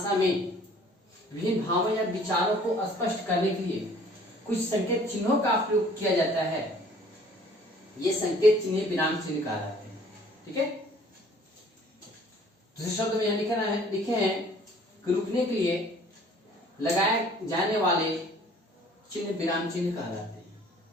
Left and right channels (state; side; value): normal; both; correlation 0.54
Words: में विभिन्न भावों या विचारों को स्पष्ट करने के लिए कुछ संकेत चिन्हों का प्रयोग किया जाता है। ये संकेत चिन्ह विराम चिन्ह कहलाते हैं। ठीक है, दूसरे शब्द में यह लिखे हैं कि रुकने के लिए लगाए जाने वाले चिन्ह विराम चिन्ह कहलाते